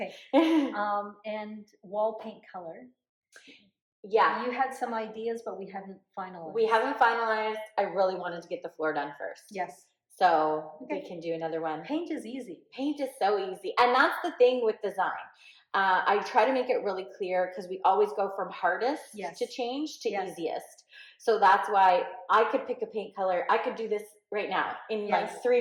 And wall paint color. Yeah. You had some ideas, but we haven't finalized. We haven't finalized. I really wanted to get the floor done first. Yes. So Okay. we can do another one. Paint is easy. Paint is so easy. And that's the thing with design. I try to make it really clear because we always go from hardest to change to easiest. So that's why I could pick a paint color. I could do this right now in like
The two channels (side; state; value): both; identical; correlation 1.00